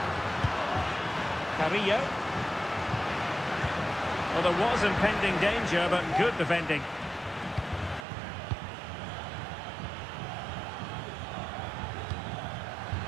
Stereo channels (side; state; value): left; drops out; at 8.1 s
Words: Carrillo. Well, there was impending danger, but good defending.